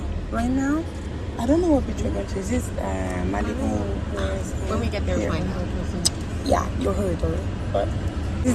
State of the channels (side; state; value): both; identical; correlation 1.00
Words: right now, I don't know what beach we're going to. Is this Malibu? When we get there, we'll find out. Yeah, you heard already. But